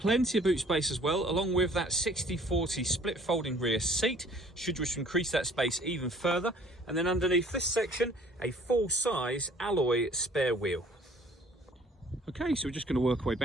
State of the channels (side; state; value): both; normal; correlation 0.55